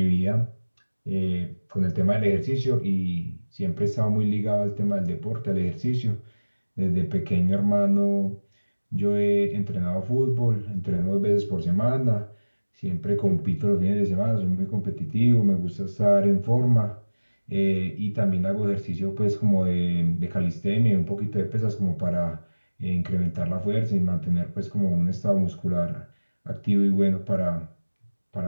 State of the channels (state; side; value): inverted; both; correlation -1.00